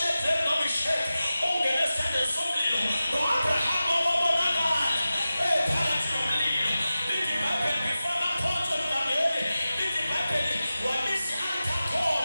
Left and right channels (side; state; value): both; inverted; correlation -0.94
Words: noMeshaki ungene esithandweni somlilo. No-Abraham wabonakala phakathi nomlilo. Lithi iBhayibheli before baphonswe lukameli, lithi iBhayibheli wabisa